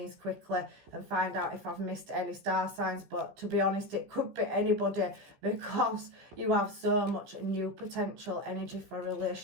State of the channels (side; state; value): left; late; 16 ms